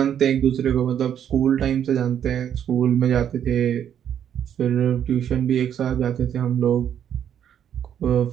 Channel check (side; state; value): left; quieter; 9.4 dB